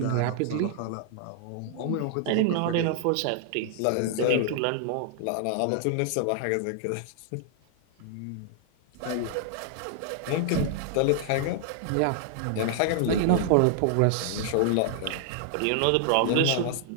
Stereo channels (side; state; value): both; different; correlation -0.01